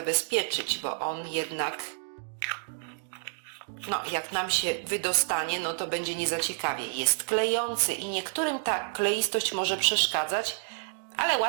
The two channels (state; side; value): silent; left; digital silence